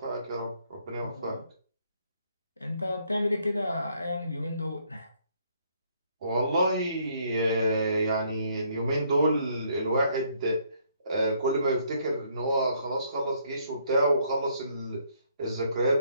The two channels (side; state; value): both; inverted; correlation -0.68